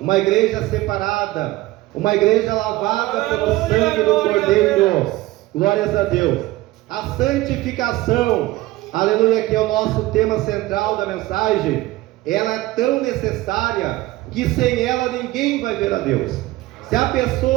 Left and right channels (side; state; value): left; quieter; 18.3 dB